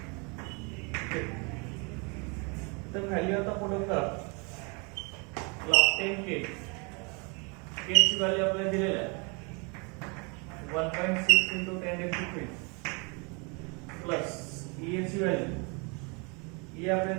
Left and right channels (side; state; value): left; quieter; 32.3 dB